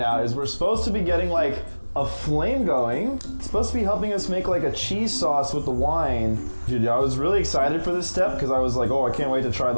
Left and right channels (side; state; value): both; inverted; correlation -1.00